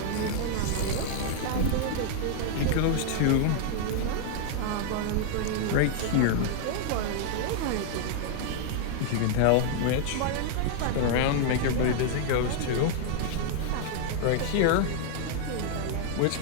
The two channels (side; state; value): both; different; correlation 0.00